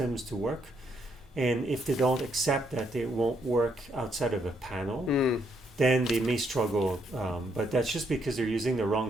to work. And if they don't accept that they won't work outside of a panel, then they may struggle. But that's just because they're using the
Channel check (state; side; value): normal; both; correlation 0.74